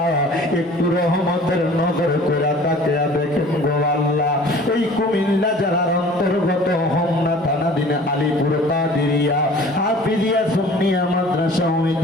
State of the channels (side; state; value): both; normal; correlation 0.47